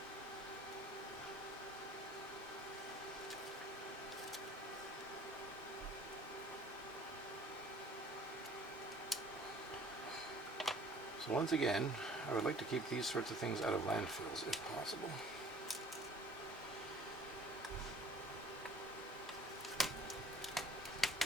So once again, I would like to keep these sorts of things out of landfills if possible.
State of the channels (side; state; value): both; normal; correlation 0.51